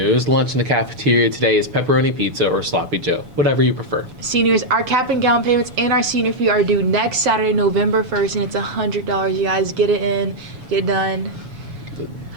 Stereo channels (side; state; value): left; late; 7.1 ms